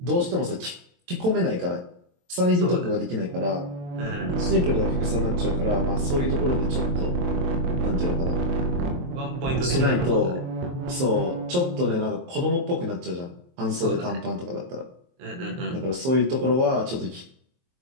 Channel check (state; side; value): late; left; 23 ms